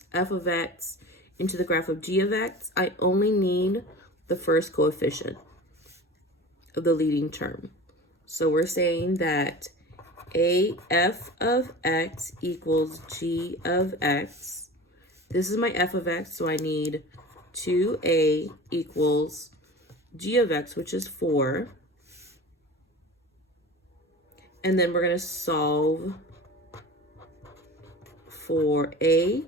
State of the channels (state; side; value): normal; both; correlation 0.35